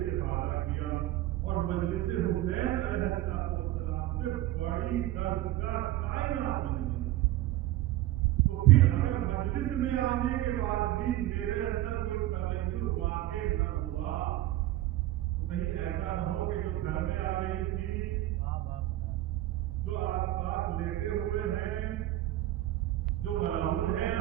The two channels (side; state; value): left; quieter; 15.1 dB